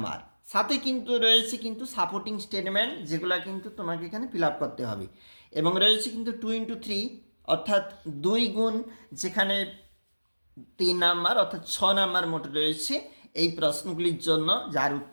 সাথে কিন্তু রয়েছে কিন্তু সাপোর্টিং স্টেটমেন্ট, যেগুলো কিন্তু তোমাকে এখানে ফিল আপ করতে হবে। এবং রয়েছে কিন্তু 2 into 3 অর্থাৎ 2 গুণ, যেখানে 3 নাম্বার অর্থাৎ 6 নাম্বার মোট রয়েছে এই প্রশ্নগুলির জন্য, যার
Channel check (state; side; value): inverted; both; correlation -1.00